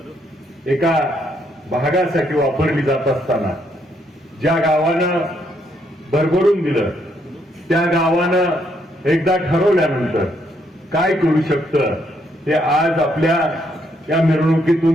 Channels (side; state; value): both; normal; correlation 0.73